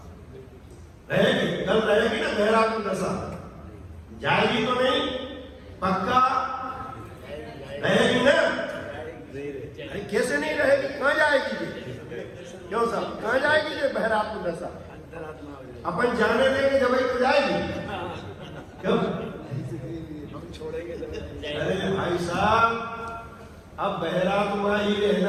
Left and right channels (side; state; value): both; identical; correlation 1.00